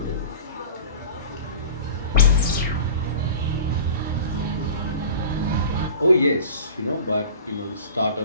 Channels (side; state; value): both; inverted; correlation -0.39